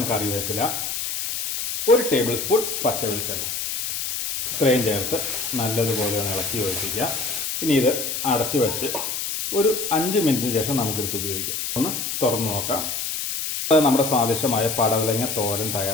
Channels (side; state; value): left; noise; hiss, 3 dB below the sound